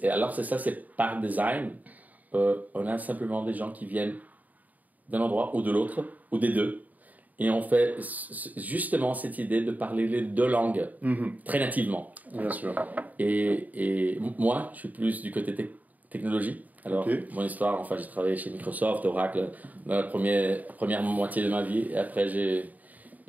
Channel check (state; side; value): late; left; 0.077 ms